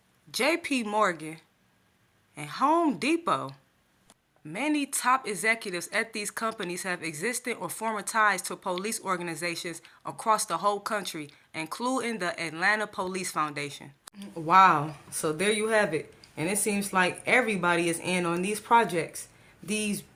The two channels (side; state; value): both; identical; correlation 1.00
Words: J.P. Morgan, and Home Depot. Many top executives at these companies have existed or former ties to police organizations across the whole country, including the Atlanta Police Foundation. Wow, so there you have it. And it seems like everybody is in on these projects. These